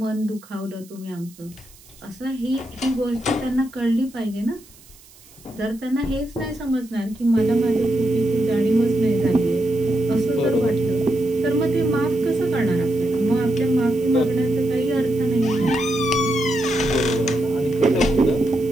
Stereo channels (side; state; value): right; noise; hiss, 24 dB below the sound